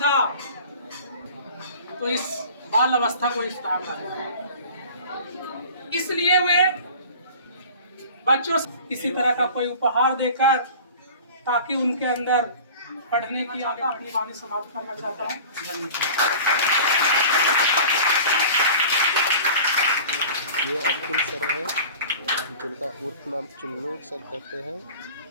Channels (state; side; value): inverted; both; correlation -0.41